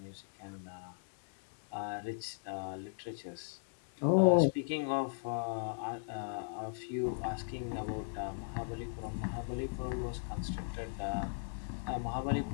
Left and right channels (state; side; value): silent; right; digital silence